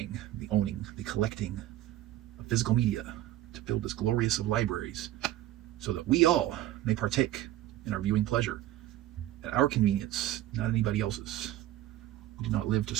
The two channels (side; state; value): left; quieter; 14.0 dB